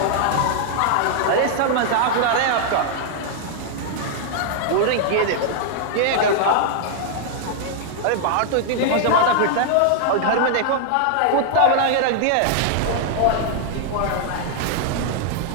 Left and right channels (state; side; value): different; both; correlation 0.00